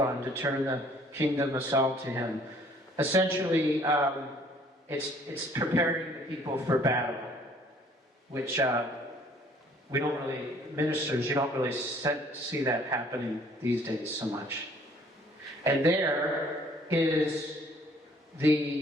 to turn the kingdom of Saul to him. Essentially, it's preparing the people for battle, which we don't really, ministers, you don't really see that happening these days so much. And there is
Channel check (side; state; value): both; normal; correlation 0.58